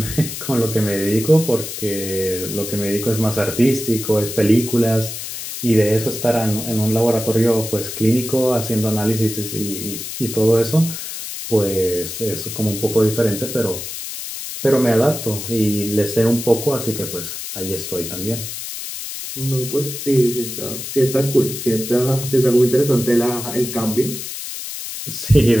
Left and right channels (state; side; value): noise; left; hiss, 8 dB below the sound